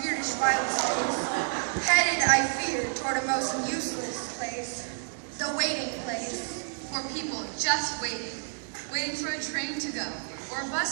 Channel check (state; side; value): silent; left; digital silence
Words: wild space, headed, I fear, toward a most useless place, the waiting place. For people just waiting for a train to go, or a